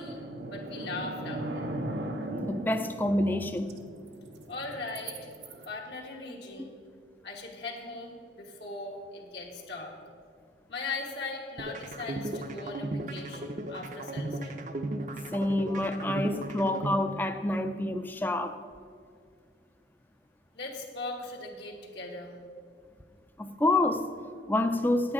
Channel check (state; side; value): normal; both; correlation 0.68